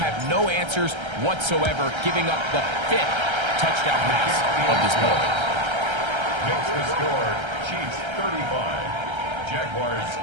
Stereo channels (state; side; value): late; left; 1.3 ms